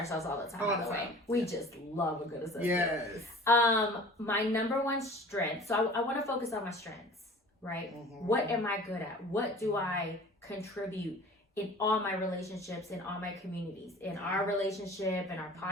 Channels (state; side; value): normal; both; correlation 0.44